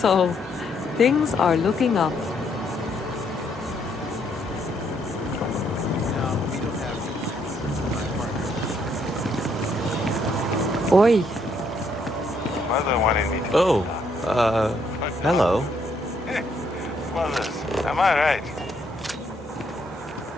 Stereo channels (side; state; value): both; normal; correlation 0.72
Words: things are looking up. Oi. Mother wanted me to. Oh, hello. Mothers, am I right?